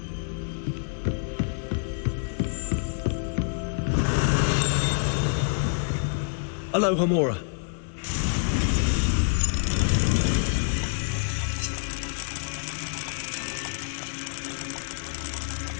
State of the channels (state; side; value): silent; right; digital silence